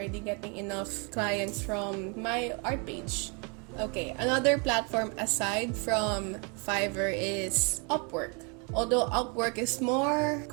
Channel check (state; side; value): quieter; left; 34.2 dB